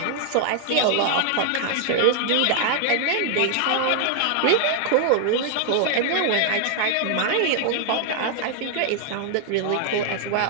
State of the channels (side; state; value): both; different; correlation 0.00